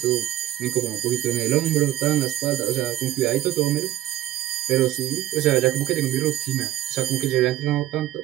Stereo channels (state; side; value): quieter; left; 13.7 dB